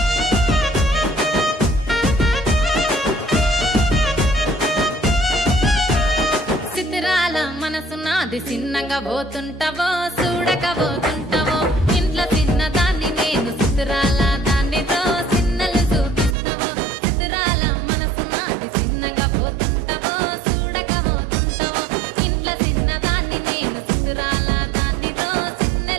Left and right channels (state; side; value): drops out; left; at 16.4 s